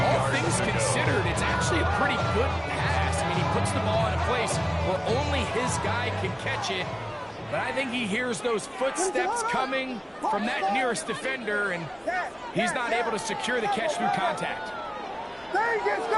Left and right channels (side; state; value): both; identical; correlation 1.00